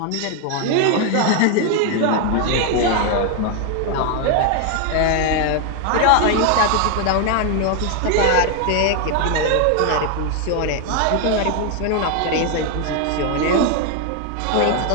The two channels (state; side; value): different; both; correlation 0.01